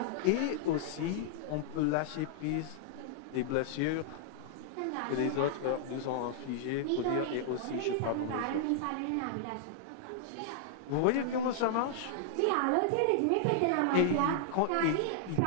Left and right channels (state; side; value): different; both; correlation -0.01